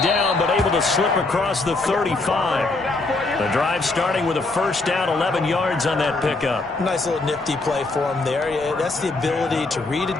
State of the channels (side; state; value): right; quieter; 3.3 dB